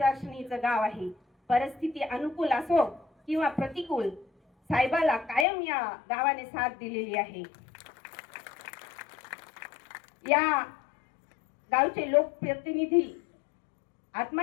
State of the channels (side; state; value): right; drops out; at 5.5 s